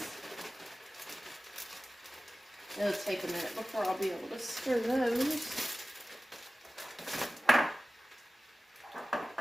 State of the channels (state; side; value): normal; both; correlation 0.96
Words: It'll take a minute before I'll be able to stir those.